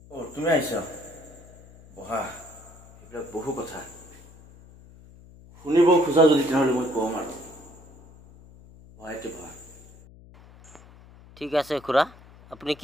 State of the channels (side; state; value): left; noise; hum, 22 dB below the sound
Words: তুমি আহিছা? বহা, সেইবিলাক বহু কথা শুনিব খোজা যদি তেনেহ'লে মই কম আৰু। বহাইতে বহা। ঠিক আছে খুৰা, আপুনি